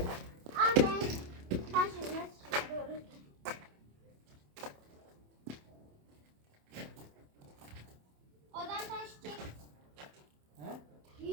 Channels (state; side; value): late; left; 27 ms